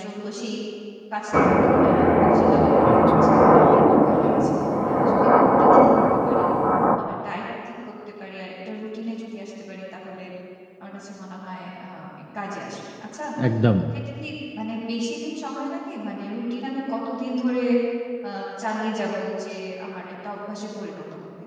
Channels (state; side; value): identical; both; correlation 1.00